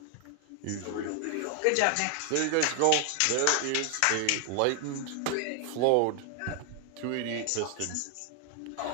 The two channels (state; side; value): different; both; correlation 0.00